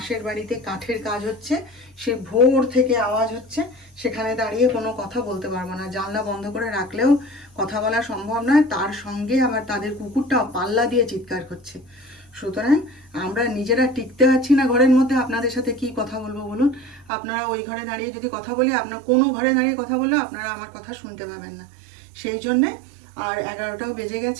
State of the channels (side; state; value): left; drops out; at 17.1 s